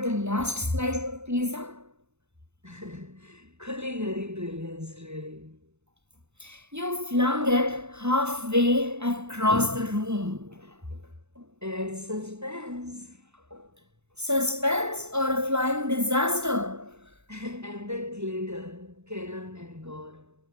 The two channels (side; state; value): left; late; 0.81 ms